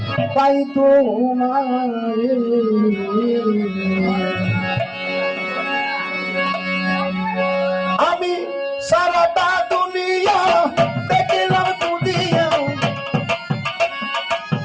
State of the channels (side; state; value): both; identical; correlation 1.00